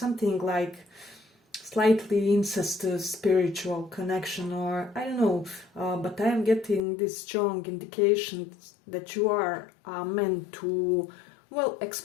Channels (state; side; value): drops out; right; at 6.8 s